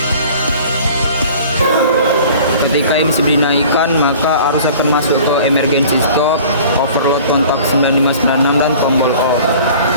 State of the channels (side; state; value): both; inverted; correlation -0.46